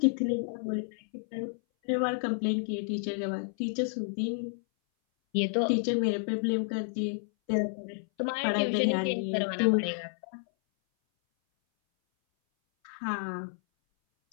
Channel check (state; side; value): silent; right; 58 dB below the other